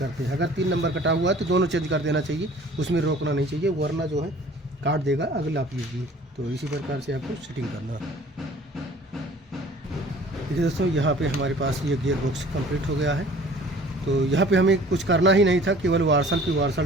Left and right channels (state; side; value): normal; both; correlation 0.50